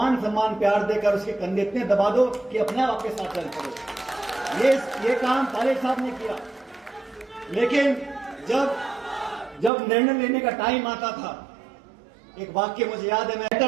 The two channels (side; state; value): left; drops out; at 9.7 s